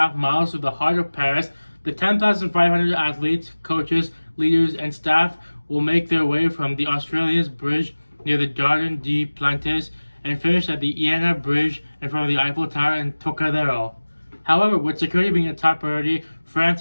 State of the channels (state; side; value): inverted; both; correlation -1.00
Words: miles through the heart of Paris, the 10,500 athletes, coaches, leaders, and staff will make their way from the Australia's Bridge near the Jardin des Plantes and finish at the Iéna Bridge in front of the Eiffel Tower in Trocadero. However, with security being a top priority, France